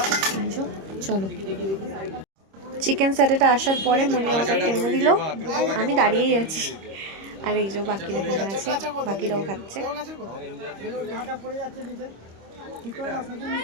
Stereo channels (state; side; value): late; left; 26 ms